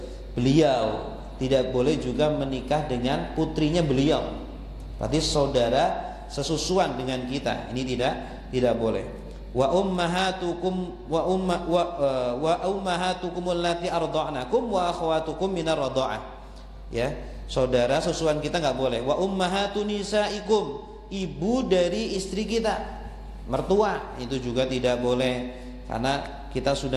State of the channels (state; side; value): identical; both; correlation 1.00